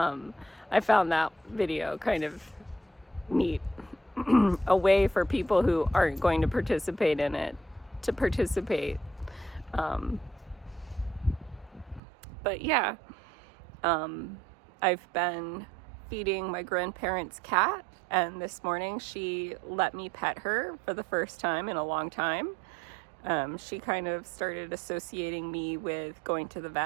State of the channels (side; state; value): left; drops out; at 12.0 s